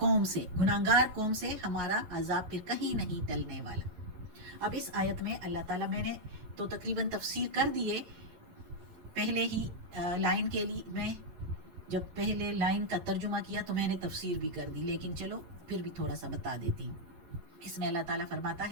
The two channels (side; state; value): left; late; 11 ms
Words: سے، گناہگار قوم سے ہمارا عذاب پھر کہیں نہیں ٹلنے والا۔ اب اس آیت میں اللہ تعالیٰ، میں نے تو تقریباً تفسیر کر دیے پہلے ہی لائن کے لیے، میں جب پہلے لائن کا ترجمہ کیا تو میں نے تفسیر بھی کر دی، لیکن چلو پھر بھی تھوڑا سا بتا دیتی ہوں۔ اس میں اللہ تعالیٰ فرماتا